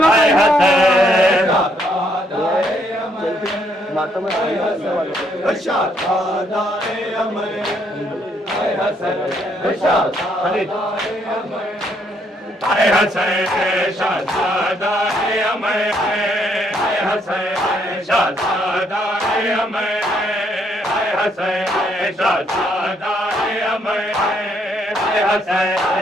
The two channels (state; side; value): normal; both; correlation 0.71